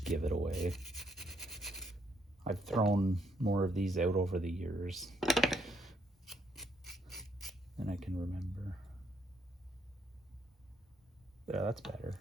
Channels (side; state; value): both; normal; correlation 0.72